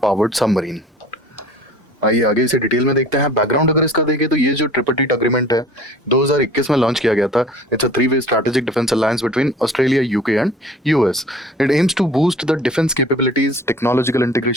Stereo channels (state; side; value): normal; both; correlation 0.46